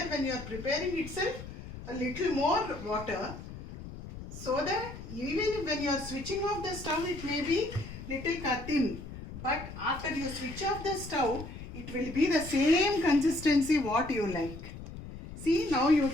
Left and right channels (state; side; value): noise; left; rumble, 12 dB below the sound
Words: when you are preparing itself a little more water, so that even when you are switching off the stove, it may be little thin, but after you switch off the stove, it will be the same consistency what you like. See, now you